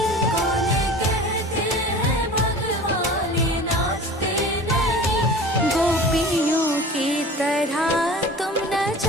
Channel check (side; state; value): both; normal; correlation 0.39